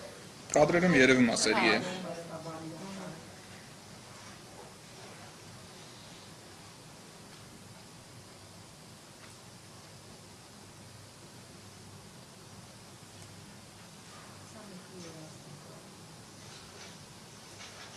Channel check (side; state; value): both; identical; correlation 1.00